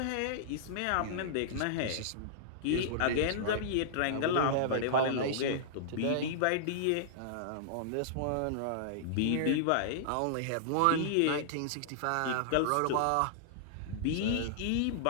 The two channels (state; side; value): different; both; correlation -0.02